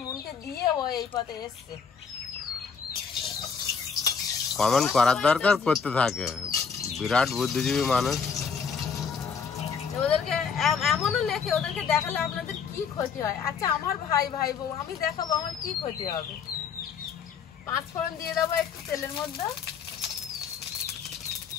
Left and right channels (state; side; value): quieter; right; 6.2 dB